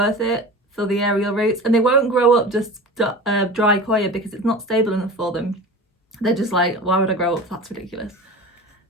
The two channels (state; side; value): normal; both; correlation 0.34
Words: it for the aerial roots, and they won't grow up just dry coir because it's not stable enough for them. They're just like, why would I grow up? That's ridiculous.